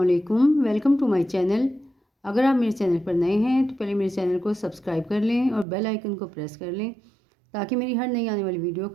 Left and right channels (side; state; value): left; drops out; at 5.7 s